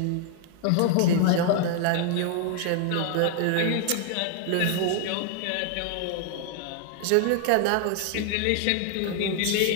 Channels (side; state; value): both; different; correlation 0.00